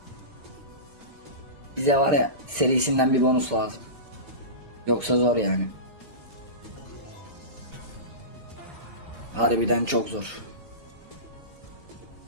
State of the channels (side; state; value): left; late; 3.1 ms